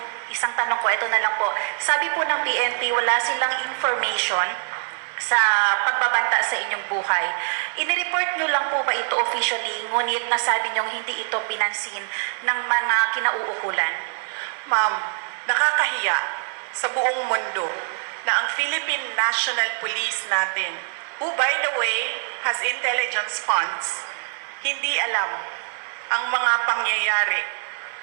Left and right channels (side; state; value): left; silent; 56 dB below the other